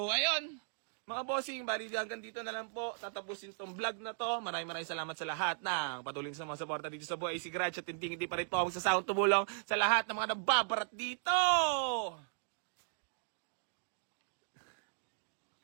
ayun. Mga bossing, bali hanggang dito na lang po. Tatapusin tong vlog na to. Maraming salamat sa lahat ng patuloy sa mga suporta dito sa Boy AC Garage. At hindi pa rin po ako sa sound tumulong sa lahat ng mga nababarat dito.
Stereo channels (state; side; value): silent; left; digital silence